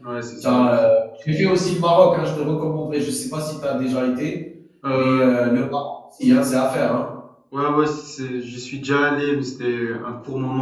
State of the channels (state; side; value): identical; both; correlation 1.00